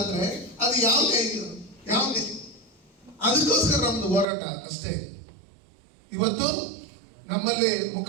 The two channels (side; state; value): left; drops out; at 4.2 s